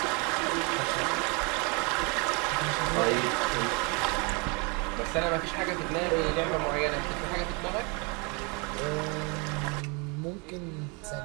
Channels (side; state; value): left; quieter; 31.2 dB